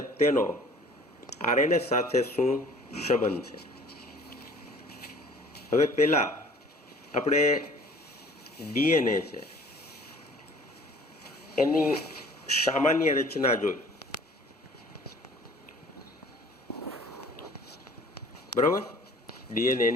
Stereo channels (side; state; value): both; normal; correlation 0.51